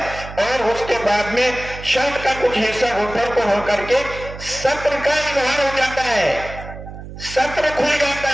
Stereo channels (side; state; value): right; noise; hum, 12 dB below the sound